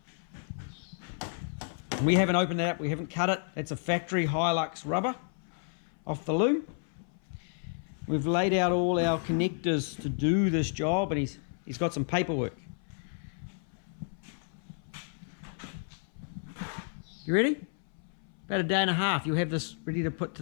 We haven't opened that up, we haven't cut it. It's a factory Hilux rubber off the loom. We've laid out all our connectors to do this job, and he's got some paperwork. You ready? About a day and a half, you'll have this ready to put to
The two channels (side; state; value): right; silent; 57 dB below the other